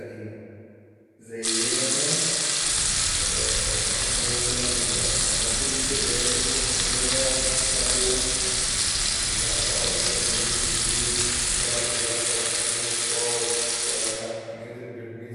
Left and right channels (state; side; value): identical; both; correlation 1.00